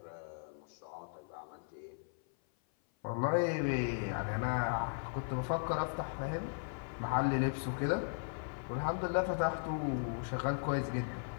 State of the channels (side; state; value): right; silent; 53 dB below the other